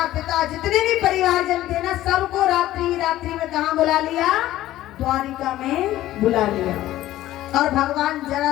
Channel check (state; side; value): quieter; right; 14.6 dB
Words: पिता जितने भी परिवार जन थे ना, सबको रात्रि में कहाँ बुला लिया, द्वारिका में बुला लिया। और भगवान